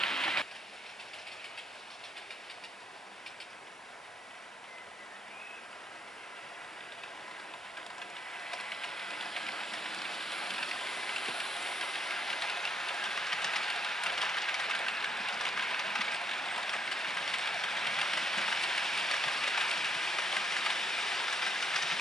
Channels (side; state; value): both; normal; correlation 0.73